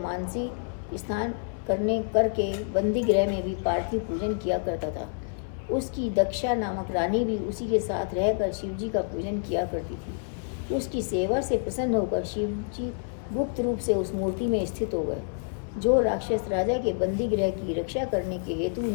स्नान करके बंदी गृह में भी पार्थिव पूजन किया करता था। उसकी दक्षा नामक रानी भी उसी के साथ रहकर शिवजी का पूजन किया करती थी। उसकी सेवा से प्रसन्न होकर शिवजी गुप्त रूप से उस मूर्ति में स्थित हो गए। जो राक्षस राजा के बंदी गृह की रक्षा करने के हेतु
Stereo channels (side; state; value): right; silent; 59 dB below the other